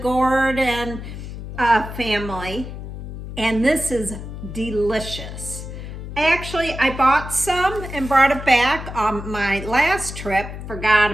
and family. And this is delicious. I bought some and brought it back on my last trip, forgot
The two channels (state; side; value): noise; left; hum, 9 dB below the sound